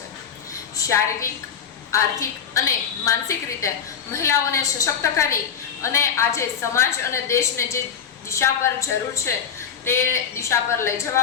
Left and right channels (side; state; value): right; quieter; 7.4 dB